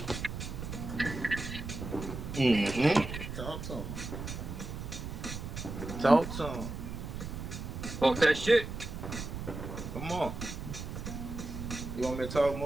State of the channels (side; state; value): right; noise; rumble, 7 dB below the sound